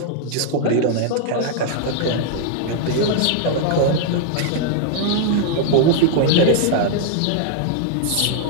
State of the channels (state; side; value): different; both; correlation 0.00